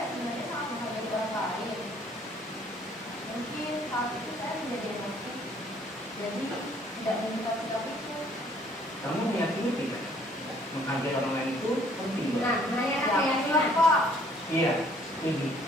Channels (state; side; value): normal; both; correlation 0.60